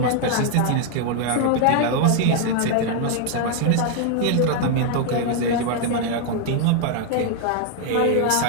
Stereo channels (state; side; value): different; both; correlation 0.00